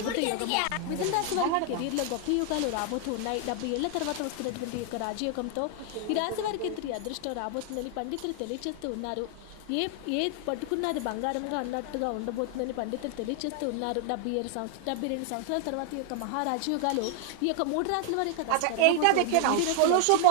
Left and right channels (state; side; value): different; both; correlation 0.00